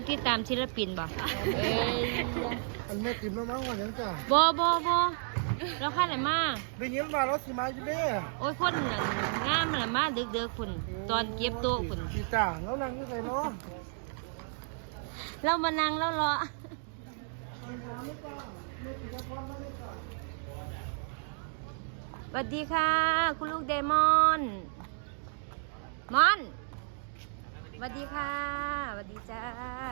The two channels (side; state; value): left; silent; 56 dB below the other